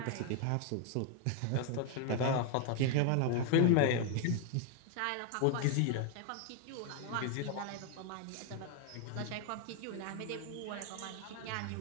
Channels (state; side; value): different; both; correlation 0.00